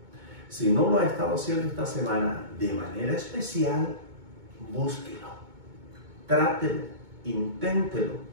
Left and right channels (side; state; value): left; late; 2.2 ms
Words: Si no lo ha estado haciendo esta semana de manera especial, búsquelo, trátelo, inténtelo